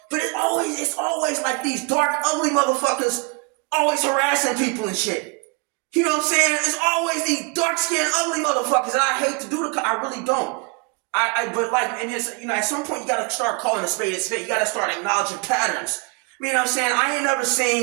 But it's always like these dark, ugly motherfuckers always harassing people and shit. You know what I'm saying? It's always these dark-skinned, ugly motherfuckers. And I hate to do I really don't. But at some point you gotta start calling a spade a spade. You gotta start acknowledging patterns. You know what I'm saying? I ain't never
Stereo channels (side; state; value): left; quieter; 33.4 dB